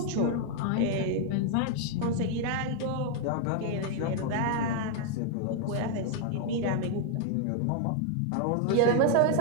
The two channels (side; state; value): both; different; correlation 0.00